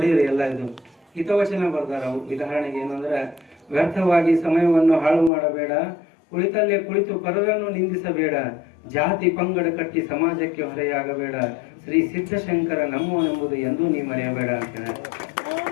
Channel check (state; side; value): drops out; right; at 5.3 s